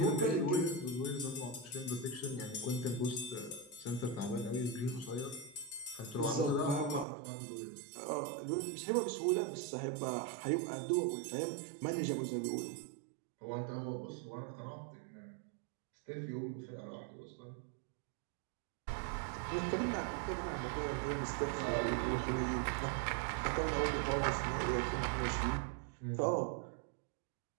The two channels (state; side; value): drops out; left; at 7.1 s